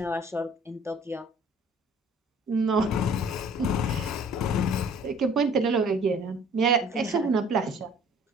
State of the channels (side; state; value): both; normal; correlation 0.52